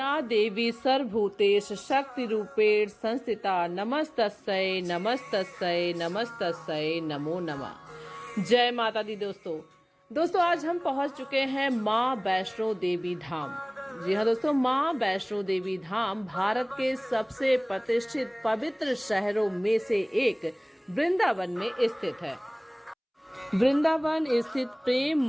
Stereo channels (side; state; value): both; identical; correlation 1.00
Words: या देवी सर्वभूतेषु शक्तिरूपेण संस्थिता नमस्तस्यै नमस्तस्यै नमस्तस्यै नमो नमः। जय माता दी। दोस्तों आज हम पहुंच चुके हैं माँ वैष्णो देवी धाम। जी हाँ दोस्तों, माँ वैष्णो देवी धाम भारत के सबसे प्रतिष्ठित पवित्र शहरों में से एक वृंदावन में स्थित है। वृंदावन स्थित प्रेम